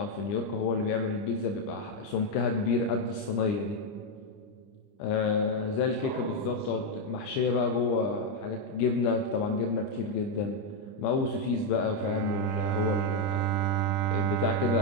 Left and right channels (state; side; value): late; right; 30 ms